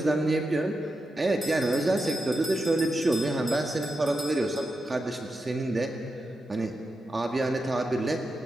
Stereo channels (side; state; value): both; normal; correlation 0.88